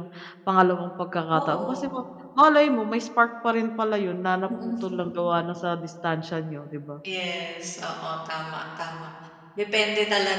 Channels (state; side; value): identical; both; correlation 1.00